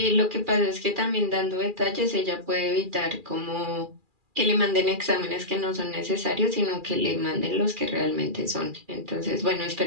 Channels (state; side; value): late; left; 2.4 ms